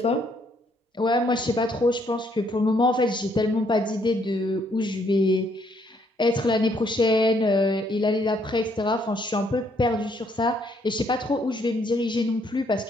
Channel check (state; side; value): normal; both; correlation 0.70